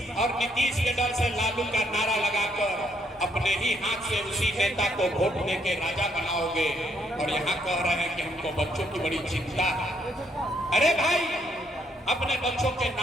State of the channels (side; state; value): both; normal; correlation 0.72